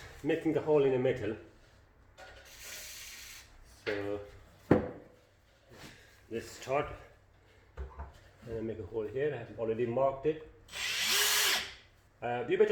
making a hole in a metal. So let's start. And make a hole here. I have already marked it. You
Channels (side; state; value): both; identical; correlation 1.00